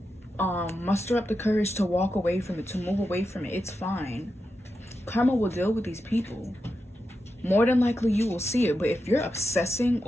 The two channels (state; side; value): normal; both; correlation 0.88